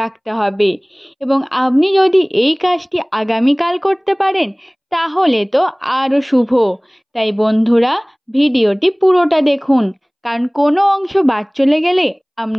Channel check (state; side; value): identical; both; correlation 1.00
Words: রাখতে হবে। এবং আপনি যদি এই কাজটি আগামীকাল করতে পারেন তাহলে তো আরও শুভ। তাই বন্ধুরা, ভিডিওটি পুরোটা দেখুন, কারণ কোনো অংশ বাদ চলে গেলে